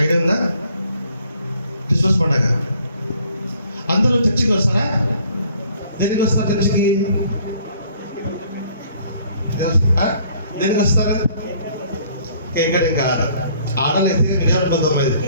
ఐడియా ఉందా? క్రిస్మస్ పండుగ అందరూ చర్చికి వస్తారా? దేనికి వస్తారు చర్చికి? దేనికి వస్తారు? ఇంకా ఆడలైతే విజయవంతం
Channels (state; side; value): inverted; both; correlation -0.59